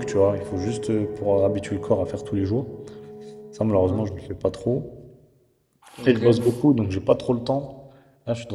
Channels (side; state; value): both; identical; correlation 1.00